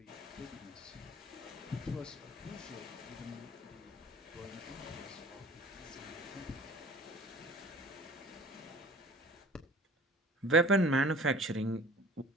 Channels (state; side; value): normal; both; correlation 0.46